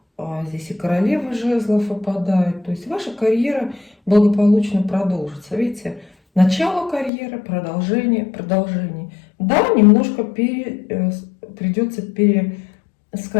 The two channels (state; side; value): drops out; right; at 7.1 s